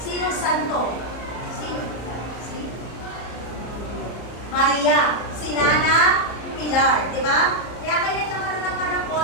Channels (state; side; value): late; right; 34 ms